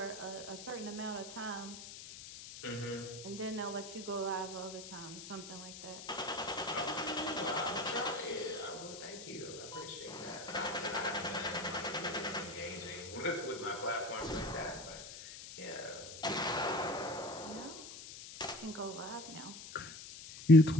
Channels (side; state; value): left; noise; hiss, 12 dB below the sound